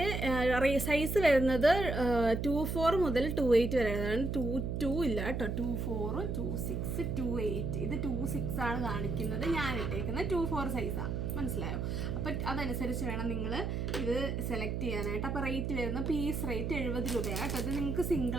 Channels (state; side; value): noise; right; hum, 2 dB below the sound